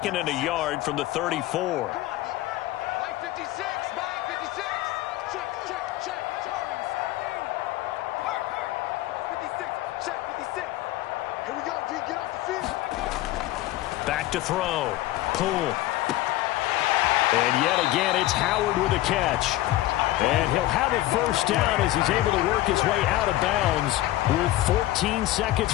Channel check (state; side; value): quieter; right; 15.8 dB